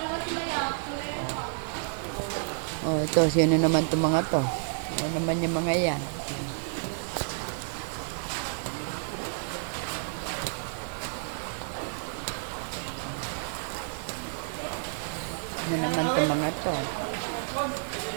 Oh, ito, yun na naman itong mga to. Yan naman yung mga yan. Yan naman itong mga to.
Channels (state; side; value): silent; left; digital silence